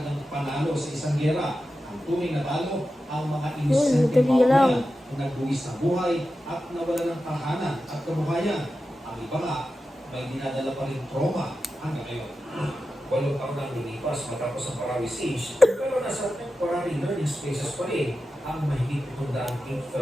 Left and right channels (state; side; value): normal; both; correlation 0.92